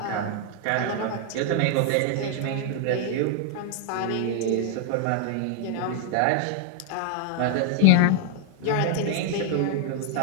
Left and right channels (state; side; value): different; both; correlation 0.00